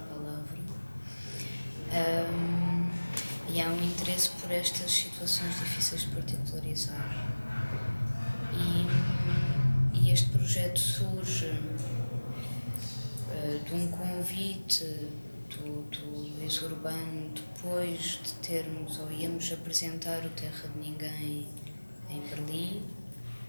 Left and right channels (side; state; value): both; inverted; correlation -1.00